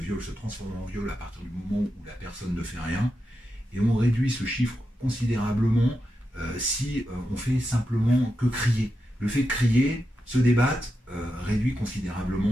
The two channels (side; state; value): both; normal; correlation 0.88